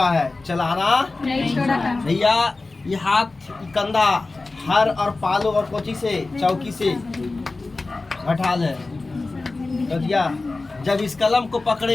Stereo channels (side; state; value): right; quieter; 3.4 dB